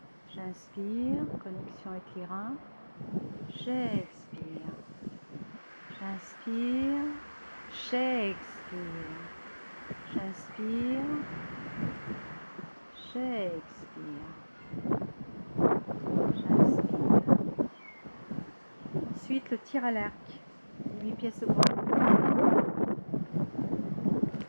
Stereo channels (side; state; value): both; inverted; correlation -1.00